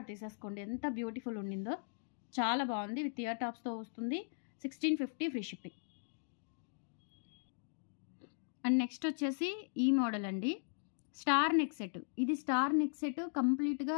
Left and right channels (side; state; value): right; silent; digital silence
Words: తీసేసుకోండి. ఎంత బ్యూటిఫుల్ ఉండిందో, చాలా బాగుంది. విత్ ఇయర్ టాప్స్తో వస్తుంది. 1650 ఫ్రీ షిప్పింగ్. అండ్ నెక్స్ట్ వచ్చేసి ఈ మోడల్ అండి, స్టార్ నెక్ సెట్. ఇది స్టార్ నెక్ సెట్ కంప్లీట్గా